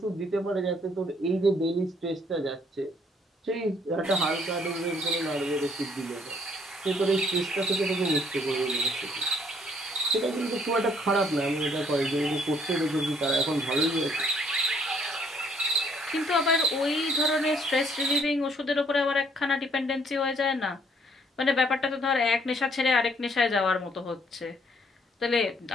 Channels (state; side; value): normal; both; correlation 0.65